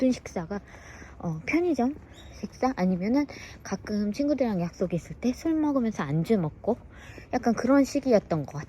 식사가 편의점 식사 아니면은 가끔 친구들이랑 약속 있을 때 술 먹으면서 안주 먹고 약간 그런 시기였던 것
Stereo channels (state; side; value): identical; both; correlation 1.00